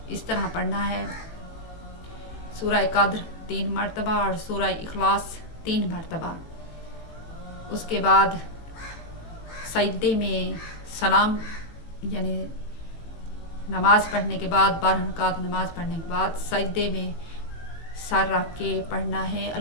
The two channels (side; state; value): right; late; 18 ms